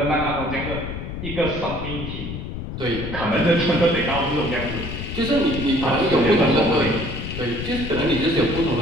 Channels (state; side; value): noise; left; rumble, 7 dB below the sound